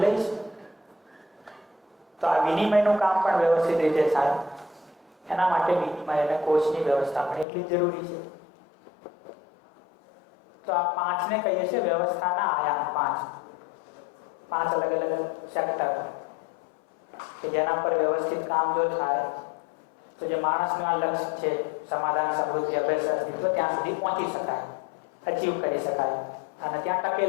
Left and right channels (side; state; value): right; drops out; at 7.5 s